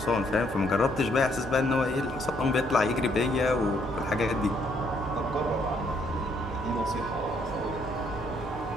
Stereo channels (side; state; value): both; normal; correlation 0.70